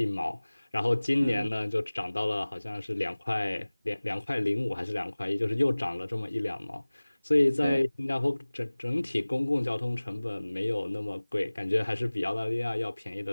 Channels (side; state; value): both; inverted; correlation -1.00